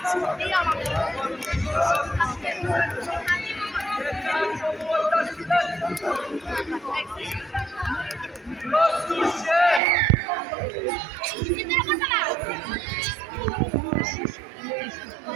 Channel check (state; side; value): drops out; left; at 9.8 s